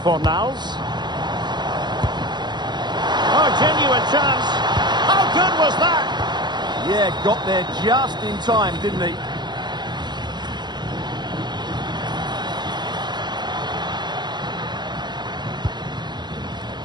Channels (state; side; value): late; left; 0.21 ms